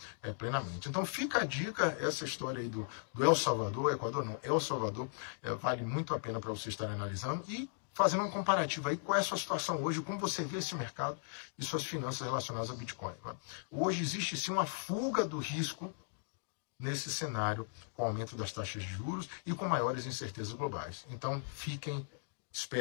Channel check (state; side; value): silent; right; digital silence